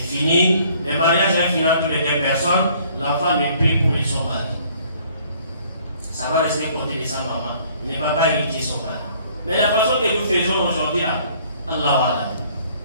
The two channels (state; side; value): inverted; both; correlation -0.59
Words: fini. Le mariage va finir entre les 2 personnes. L'enfant ne peut pour son mari. Ça va rester côté de sa maman. Il ne va pas hériter son mari. Mais la façon que nous faisons aujourd'hui là, Allah.